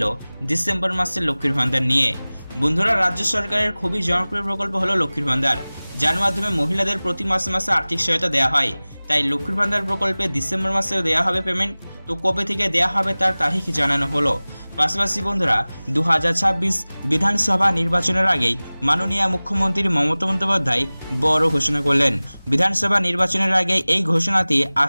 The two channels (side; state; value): both; inverted; correlation -0.99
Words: डिसेम्बर मासेर लक्ष्मीर भान्डार निये। बंधुरा राज्य सरकारेर खुबই জনপ্রিয় प्रकल्प हलो लक्ष्मीर भान्डार, जार माध्यमे महिलादेर प्रति मासे मासे आर्थिक सहायता देওয়া হয়। তাই লক্ষ্মীর ভান্ডার প্রকল্পে ডিসেম্বর মাসেও দেওয়া হবে পেমেন্ট। তো কবে থেকে দেওয়া হবে তার তারিখ জানানো হলো। পাশাপাশি বন্ধুরা 2026 বিধানসভা নির্বাচনের আগেই মাননীয় মুখ্যমন্ত্রী মমতা বন্দ্যোপাধ্যায় বড় ঘোষণা করলেন। বিধানসভা নির্বাচনের আগে এই ঘোষণাটি